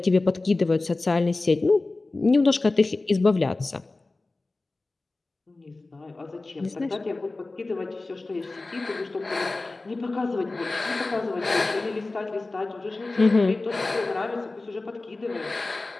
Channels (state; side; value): quieter; right; 3.2 dB